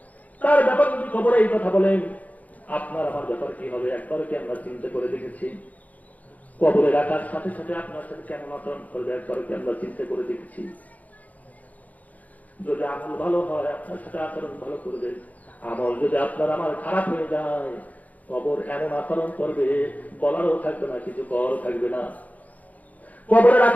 তার ব্যাপার যদি কবরে এই কথা বলেন, আপনার আমার ব্যাপার কি হবে? একবার কি আমরা চিন্তা করে দেখেছি? কবরে রাখার সাথে সাথে আপনার সাথে কেমন আচরণ করবে একবার কি আমরা চিন্তা করে দেখেছি? যদি আমল ভালো হয় আপনার সাথে আচরণ ভালো করবে, আমল যদি আপনার আমার খারাপ হয়ে যায় কবর এমন আচরণ করবে বলারও থাকবে না, কিছু করারও থাকবে না। কবরে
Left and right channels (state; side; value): late; right; 0.075 ms